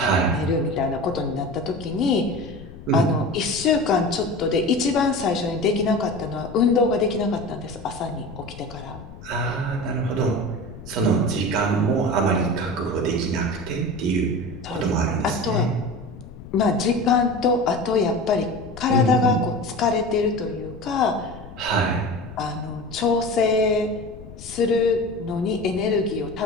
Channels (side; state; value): left; noise; rumble, 15 dB below the sound